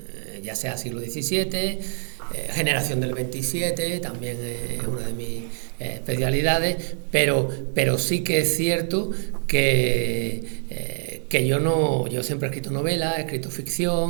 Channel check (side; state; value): left; silent; digital silence